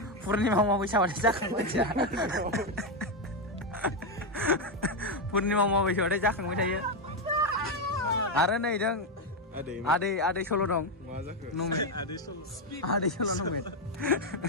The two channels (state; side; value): normal; both; correlation 0.06